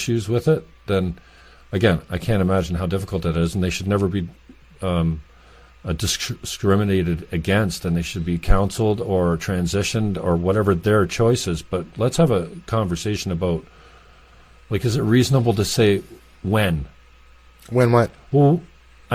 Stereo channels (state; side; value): identical; both; correlation 1.00